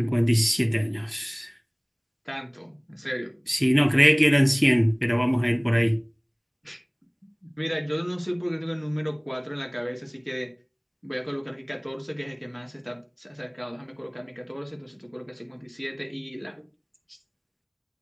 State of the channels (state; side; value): identical; both; correlation 1.00